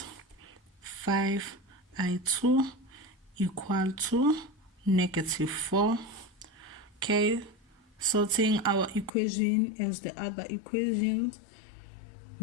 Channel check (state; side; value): drops out; right; at 9.1 s